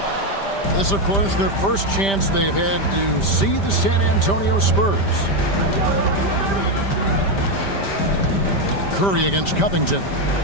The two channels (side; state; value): right; late; 5.1 ms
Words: This, of course, their first chance they've had to see the San Antonio Spurs. Curry against Covington.